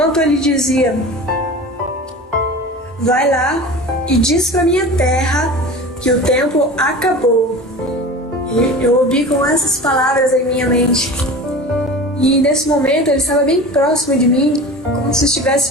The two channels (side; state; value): both; normal; correlation 0.34